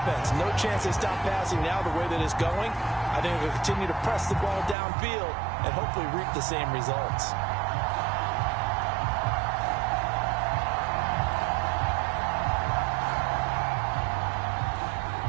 No chance they stop passing now the way that it's going. I think they'll continue to press the ball downfield and hopefully reap the same results.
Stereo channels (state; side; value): drops out; left; at 4.8 s